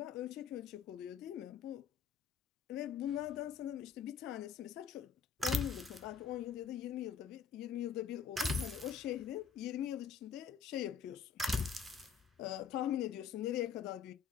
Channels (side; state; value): right; quieter; 6.7 dB